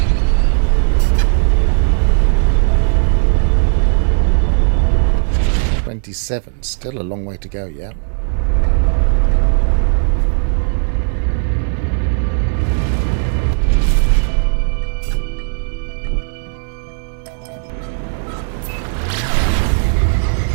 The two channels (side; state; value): left; silent; digital silence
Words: Still a long way to go, yeah.